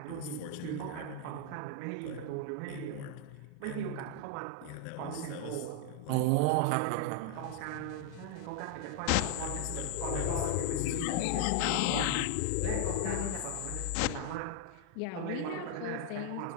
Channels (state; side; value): different; both; correlation 0.00